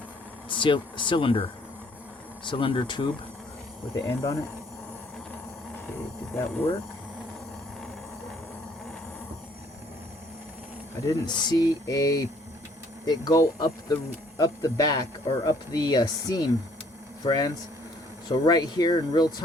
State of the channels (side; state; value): both; normal; correlation 0.62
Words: cylinder tube with the end on it. Okay, did that work? I didn't see it go up the back or up the seam, friends. So right here in real